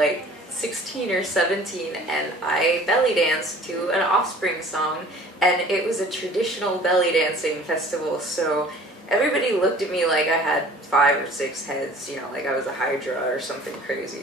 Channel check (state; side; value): normal; both; correlation 0.48